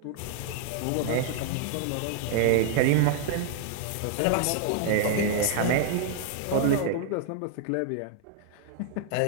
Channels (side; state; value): both; different; correlation 0.00